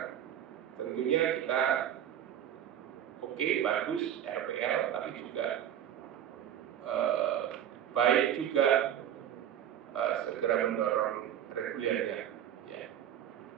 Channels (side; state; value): left; quieter; 10.3 dB